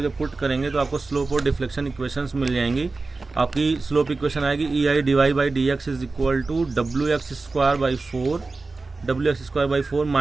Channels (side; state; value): left; quieter; 3.7 dB